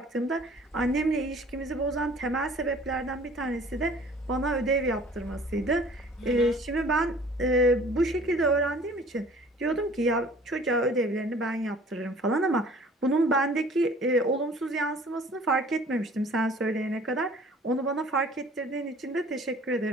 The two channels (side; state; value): both; normal; correlation 0.50